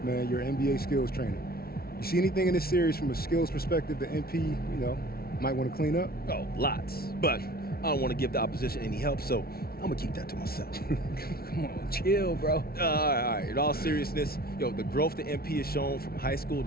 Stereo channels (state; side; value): late; right; 0.44 ms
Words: man, you're an NBA skills trainer. You see anything in this series from a skills perspective that MP, might want to clean up? Oh, lots. But I don't want to give the opposition any help, so I'm going to keep that to myself. Come on, chill, bro. All right. In all seriousness, the growth that MP has shown from high school